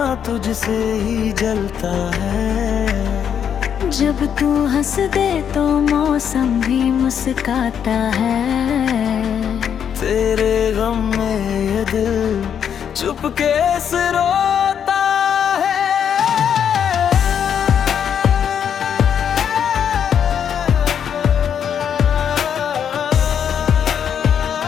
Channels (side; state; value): right; quieter; 8.3 dB